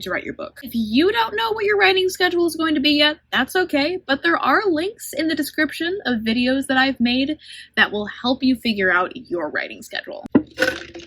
write your book? If you don't know what your writing schedule is going to be yet, that's okay, but there are links in the description of videos that I've made that will help you figure out your writing schedule.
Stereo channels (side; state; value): both; identical; correlation 1.00